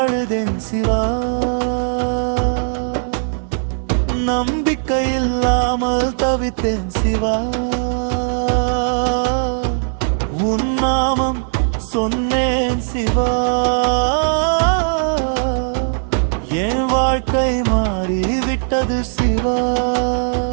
அழுதேன் சிவா, நம்பிக்கையில்லாமல் தவித்தேன் சிவா. உன் நாமம் சொன்னேன் சிவா, என் வாழ்க்கை மாறிவிட்டது சிவா.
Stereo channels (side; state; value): left; silent; 67 dB below the other